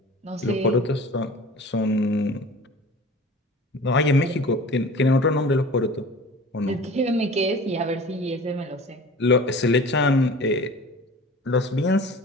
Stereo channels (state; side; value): normal; both; correlation 0.40